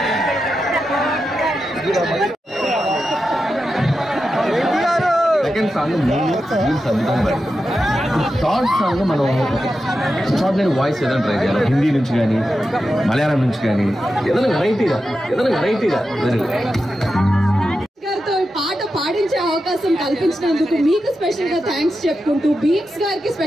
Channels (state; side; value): normal; both; correlation 0.90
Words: సెకండ్ సాంగ్ అద్భుతంగా థర్డ్ సాంగ్ మనం ఎక్స్ట్రాడినరీ వాయిస్ ఏదైనా ట్రై చేయాలి. హిందీ నుంచి కానీ, మలయాళం నుంచి కానీ, ఏదైనా వెరైటీగా గారితో పాట పాడించే అవకాశం కల్పించినందుకు మీకు స్పెషల్ గా థ్యాంక్స్ చెప్పుకుంటూ, బీట్స్ గారికి